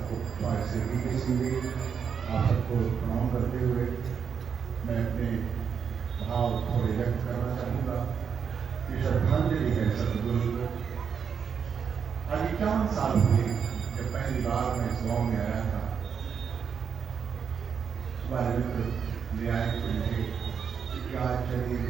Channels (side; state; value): left; quieter; 6.9 dB